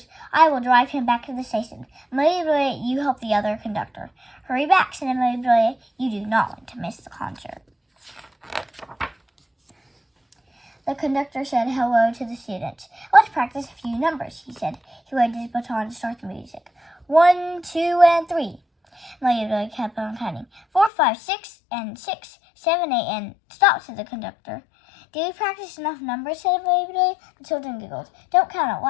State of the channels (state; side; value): drops out; right; at 20.9 s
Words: "I will drive him back to the station. Amelia Bedelia, you help the other conductor." "Hurry back," said Amelia Bedelia. "You do not want to miss the concert." The conductor said hello to the students. "Let's practice a few numbers," he said. He waved his baton to start the music. 1, 2, and 3. Amelia Bedelia kept on counting. 4, 5, 6, and 6, 7, 8, and stop, said the conductor. "Did we practice enough numbers?" said Amelia Bedelia. The children giggled. "Don't count out